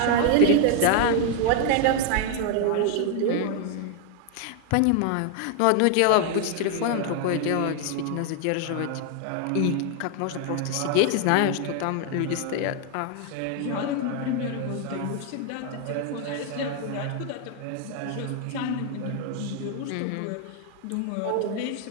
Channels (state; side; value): different; both; correlation 0.00